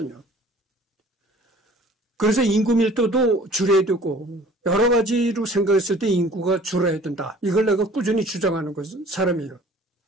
그래서 인구 밀도도 줄여야 되고 여러 가지로 생각했을 때 인구가 줄어야 된다. 이걸 내가 꾸준히 주장하는 사람이에요.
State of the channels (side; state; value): both; normal; correlation 0.50